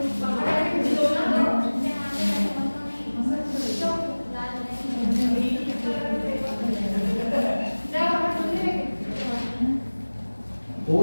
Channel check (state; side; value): inverted; both; correlation -1.00